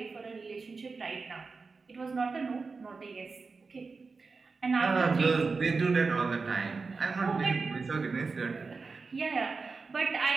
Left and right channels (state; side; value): quieter; left; 4.4 dB